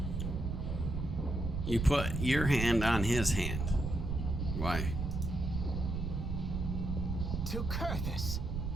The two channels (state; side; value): noise; right; rumble, 2 dB below the sound